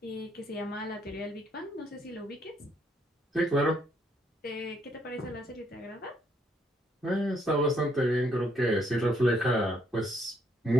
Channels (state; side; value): normal; both; correlation 0.70